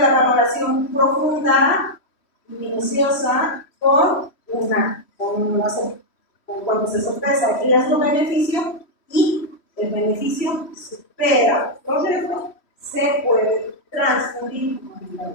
valoración profunda y minuciosa cuando se sopesa el riesgo-beneficio y el beneficio supera los riesgos, se puede transfundir con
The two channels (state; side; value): late; right; 3.1 ms